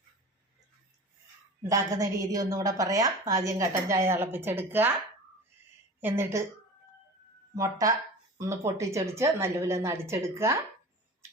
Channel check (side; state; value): both; normal; correlation 0.36